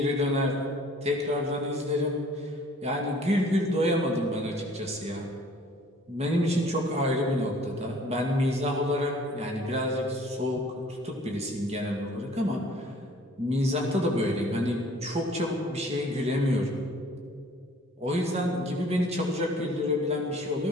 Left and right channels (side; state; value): both; normal; correlation 0.53